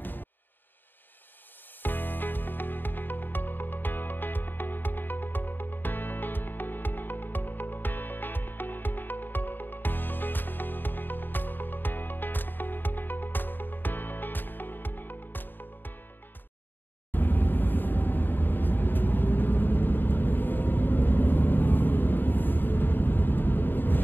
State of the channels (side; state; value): right; late; 0.093 ms